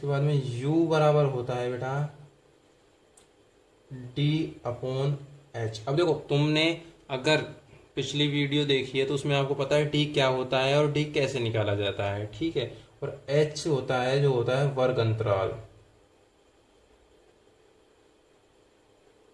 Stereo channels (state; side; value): identical; both; correlation 1.00